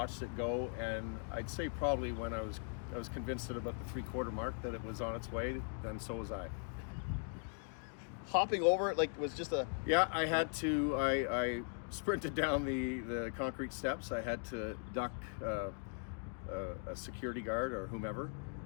it go, and I'd say probably when I was convinced at about the 3/4 mark that it was on its way, then so was I. Hopping over it, like, was just a... Yeah, I had to, I sprinted down the concrete steps. I had to duck a security guard or whomever,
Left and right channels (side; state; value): right; silent; 51 dB below the other